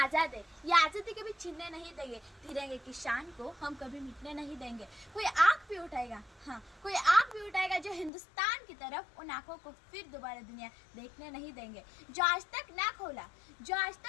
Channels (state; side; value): drops out; right; at 8.1 s